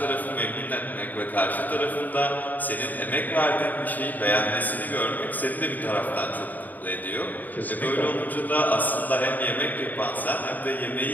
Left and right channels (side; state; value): right; late; 0.084 ms